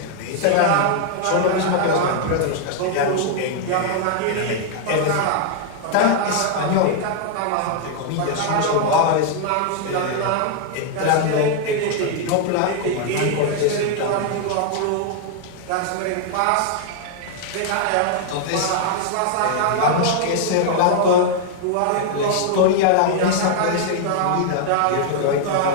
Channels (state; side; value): different; both; correlation 0.00